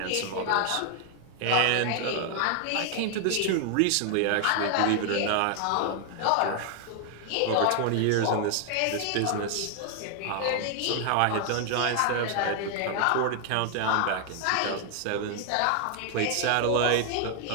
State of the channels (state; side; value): different; both; correlation 0.00